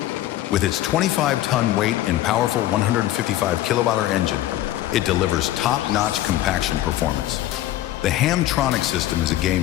With its 25-ton weight and powerful 155 kilowatt-hour engine, it delivers top-notch compaction performance. The Hamtronic system is a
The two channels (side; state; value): right; quieter; 14.3 dB